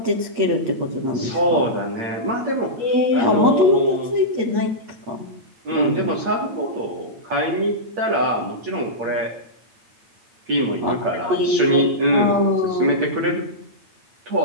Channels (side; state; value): left; late; 8.8 ms